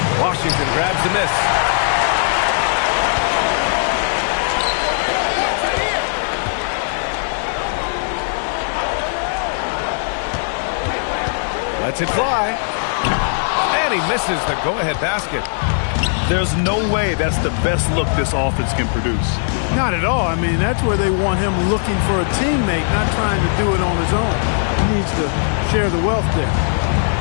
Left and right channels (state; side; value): silent; right; digital silence